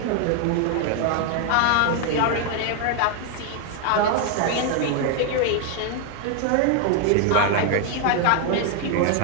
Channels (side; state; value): both; different; correlation 0.00